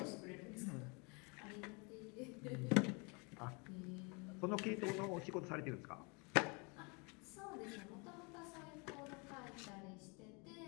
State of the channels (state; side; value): quieter; right; 31.3 dB